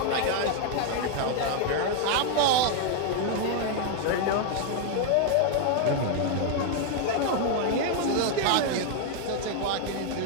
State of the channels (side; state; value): both; different; correlation 0.00